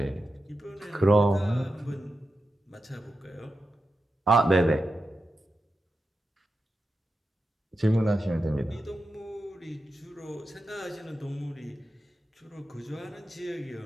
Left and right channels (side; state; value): both; normal; correlation 0.90